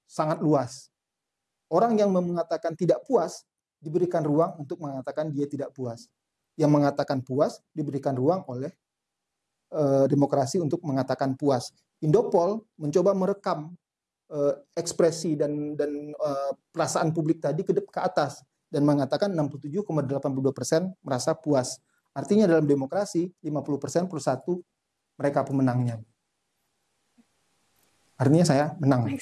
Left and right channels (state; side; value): identical; both; correlation 1.00